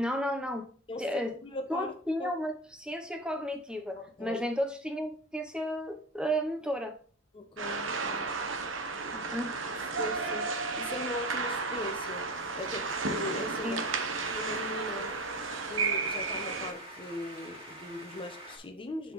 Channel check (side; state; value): both; normal; correlation 0.27